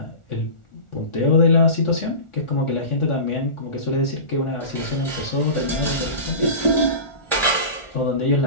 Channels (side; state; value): right; late; 1.4 ms